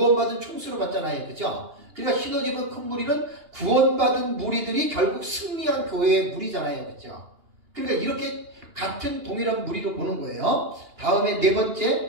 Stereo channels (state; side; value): late; left; 2.8 ms